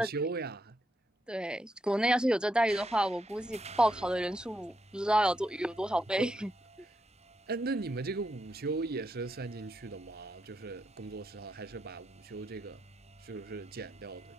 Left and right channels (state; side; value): normal; both; correlation 0.81